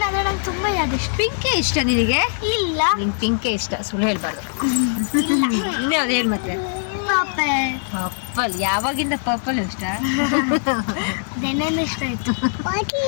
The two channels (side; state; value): right; silent; 65 dB below the other